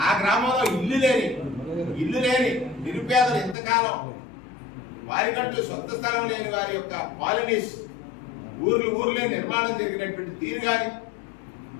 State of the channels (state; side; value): drops out; right; at 3.6 s